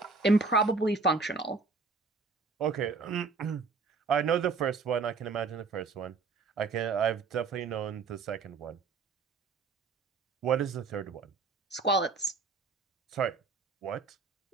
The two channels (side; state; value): left; quieter; 4.4 dB